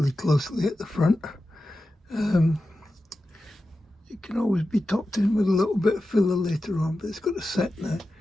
closely at the front. It can always be topped in with a little bit of filler later on, but it's got to set now.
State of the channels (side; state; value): both; normal; correlation 0.92